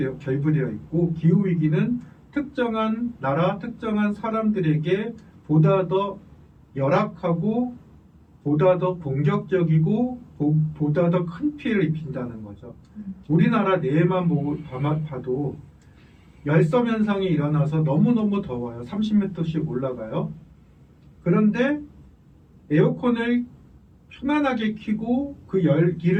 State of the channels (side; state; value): both; identical; correlation 1.00